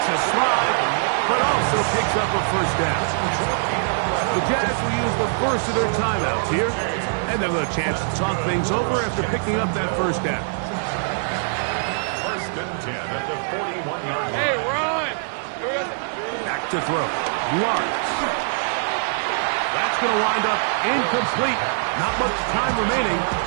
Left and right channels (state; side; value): silent; left; digital silence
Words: a slide, but also picks up a first down. The Jazz will use the first of their timeouts here, and they'll have a chance to talk things over after picking up that first down. First and 10 at the 41-yard line. Hey, run! Back to throw. Lawrence. That's going to wind up incomplete. Not much time remaining.